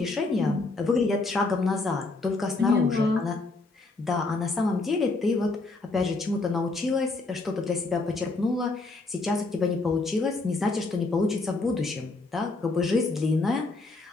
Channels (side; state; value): right; quieter; 3.4 dB